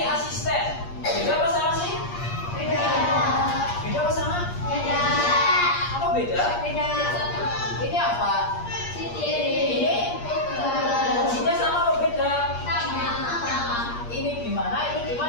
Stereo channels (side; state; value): right; late; 8.5 ms